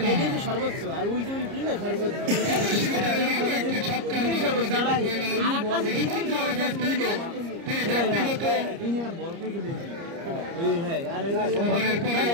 সর্বোচ্চ আর ওই যে সর্বোচ্চ একটি ছক্কার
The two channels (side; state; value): left; late; 30 ms